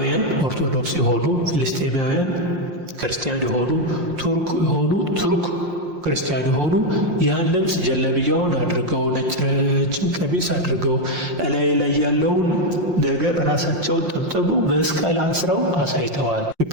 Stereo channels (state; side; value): late; left; 5.6 ms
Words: ኦርቶዶክስ የሆኑ ፍልስጤማውያን ክርስቲያን የሆኑ ቱርክ ክርስቲያን የሆኑ ያን ልብስ ጀለብያውን አድርገው ነጭ ረጅም ቀሚስ አድርገው እላይ ላይ ያለውን ነገር ራሳቸውን ጠምጥመው መስቀል አስረው አሳይተዋል።